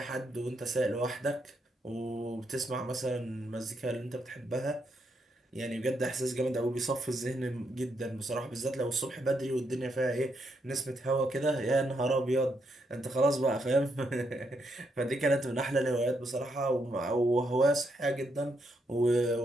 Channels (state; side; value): normal; both; correlation 0.78